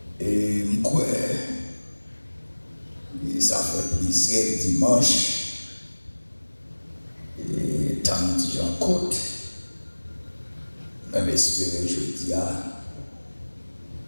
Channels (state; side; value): inverted; both; correlation -1.00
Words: Et moi, ça fait plaisir dimanche. Et tant que j'en côte, même espérer jeudi,